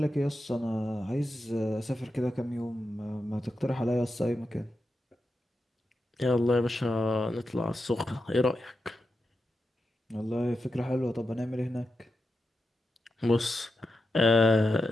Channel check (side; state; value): both; normal; correlation 0.89